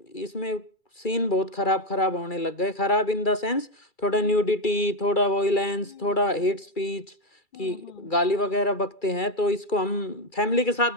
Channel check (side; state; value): right; late; 2.3 ms